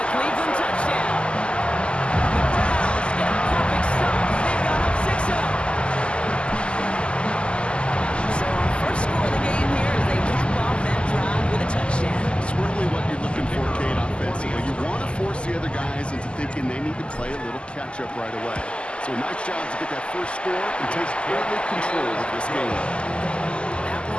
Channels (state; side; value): late; right; 0.052 ms